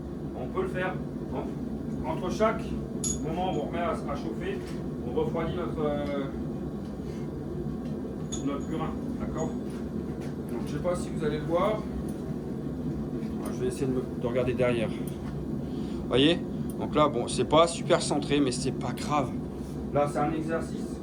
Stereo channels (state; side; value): identical; both; correlation 1.00